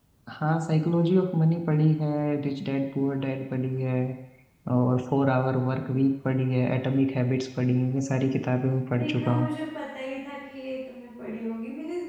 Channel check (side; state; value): both; identical; correlation 1.00